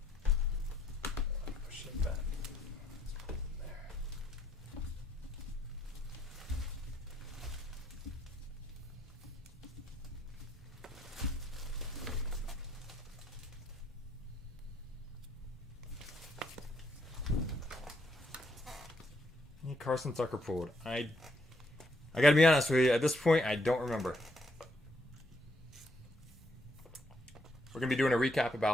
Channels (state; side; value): normal; both; correlation 0.73